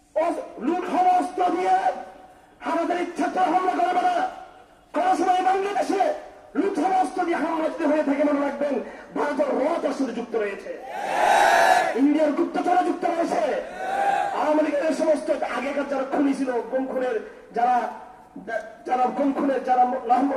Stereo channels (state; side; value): identical; both; correlation 1.00